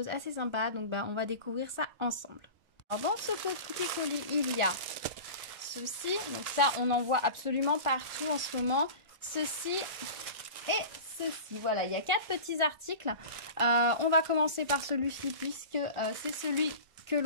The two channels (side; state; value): left; late; 1.4 ms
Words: assez sympas. Donc on va découvrir ça ensemble. Alors dans ce petit colis, il y a ceci. Donc ça, on en voit absolument partout en ce moment. Ceci et ceci. Voilà, il y a 4 petits articles. On va commencer par celui-ci puisque c'est celui que